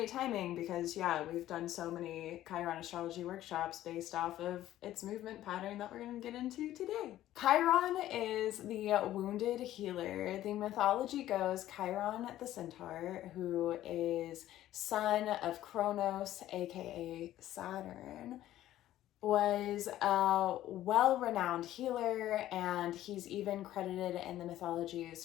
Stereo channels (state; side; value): quieter; right; 13.6 dB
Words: timing, because we've done so many Chiron astrology workshops based off of its movement pattern that we're going to get into today. Chiron is the wounded healer. The mythology goes Chiron the centaur, who is son of Kronos, aka Saturn, was a well-renowned healer, and he's even credited in the mythologies